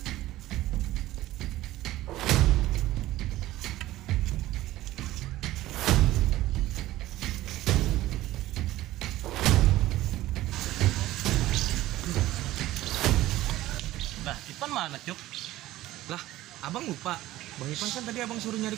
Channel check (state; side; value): quieter; left; 15.9 dB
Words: Ipan mana Cup? Lah, abang lupa. Bang Ipan kan tadi abang suruh nyari